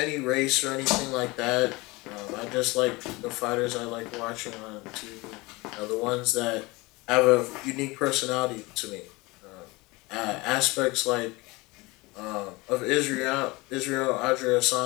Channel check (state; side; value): quieter; right; 23.5 dB